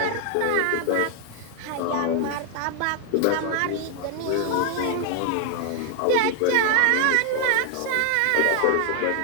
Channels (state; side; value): different; both; correlation 0.00